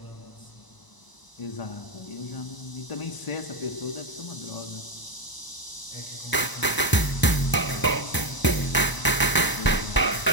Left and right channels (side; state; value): right; late; 1.0 ms